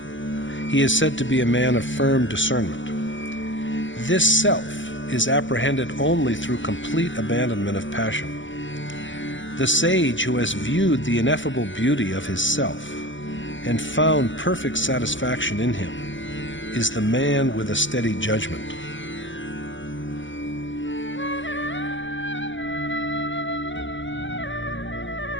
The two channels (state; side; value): late; right; 0.55 ms